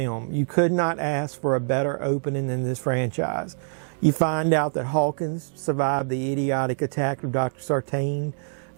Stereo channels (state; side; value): silent; left; 62 dB below the other